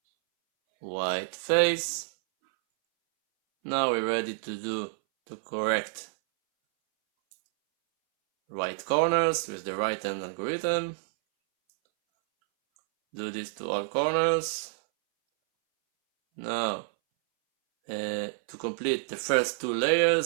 white face. Now we're ready to correct right corners with the right hand algorithm. Do this to all corners. Now to complete the first two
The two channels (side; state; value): left; silent; 59 dB below the other